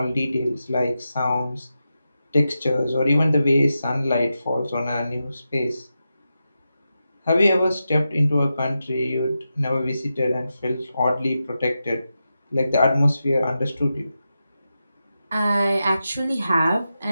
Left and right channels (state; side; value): inverted; both; correlation -0.90